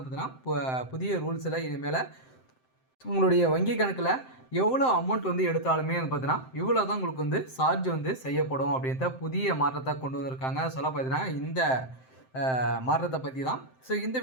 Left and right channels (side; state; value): right; late; 7.7 ms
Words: புதிய ரூல்ஸில் இனிமேல் உங்களுடைய வங்கி கணக்கில் எவ்வளோ அமௌண்ட் எடுத்தாலுமே பார்த்தீங்கன்னா இவ்வளோ தான் உங்களுக்கு சார்ஜ் செய்யப்படும் அப்படின்ற புதிய மாற்றத்தை கொண்டு வந்திருக்காங்க. சொல்ல பார்த்தீங்கன்னா இந்த மாற்றத்தை பற்றி தான் இந்த